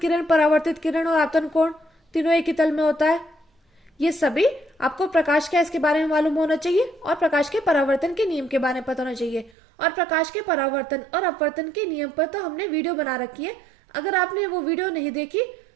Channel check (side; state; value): left; drops out; at 9.5 s